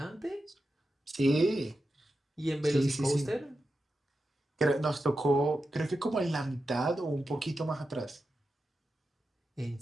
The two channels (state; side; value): normal; both; correlation 0.90